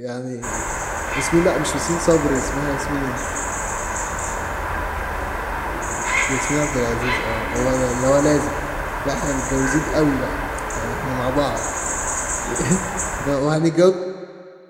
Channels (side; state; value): both; identical; correlation 1.00